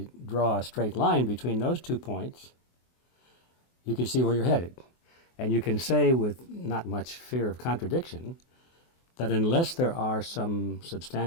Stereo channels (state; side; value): late; right; 24 ms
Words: draw a straight line between those 2 points, you can see where you're headed. And you can say with not much fear of contradiction that unless there are some